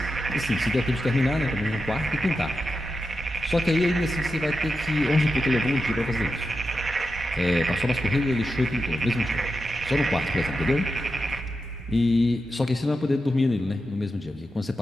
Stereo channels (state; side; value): normal; both; correlation 0.89